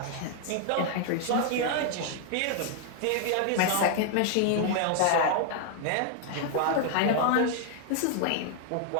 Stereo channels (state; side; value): different; both; correlation 0.00